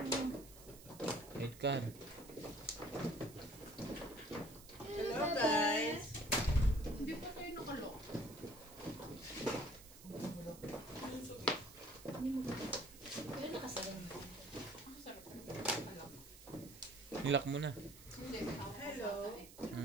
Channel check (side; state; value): right; noise; hiss, 18 dB below the sound